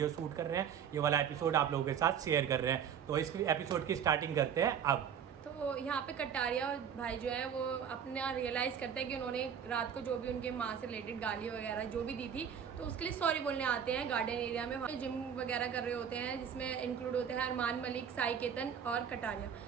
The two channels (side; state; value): left; quieter; 8.1 dB